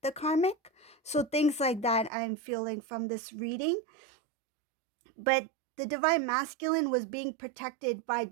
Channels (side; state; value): left; drops out; at 2.1 s